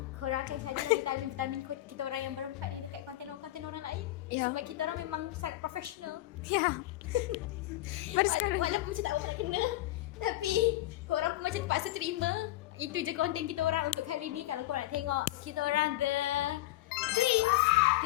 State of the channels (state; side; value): quieter; right; 16.0 dB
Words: Korang akan carilah vitamin-vitamin kita orang yang berempat ni dekat konten-konten orang lain. Ya. Sebab kita orang memang sangat profesional. Ya. Walaupun macam tak apa nak kena, tapi korang pun macam terpaksa terima. Itu je konten kita orang untuk kali ni. Kalau korang nak tengok kita orang The Twins,